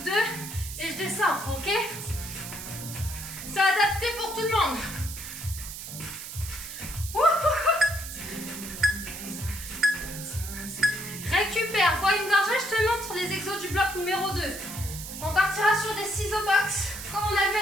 2, et je descends, ok? C'est adapté pour tout le monde. Récupère, bois une gorgée, je te montre les exos du bloc numéro 2. On partira sur des ciseaux box, comme on a vu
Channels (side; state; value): right; noise; hiss, 10 dB below the sound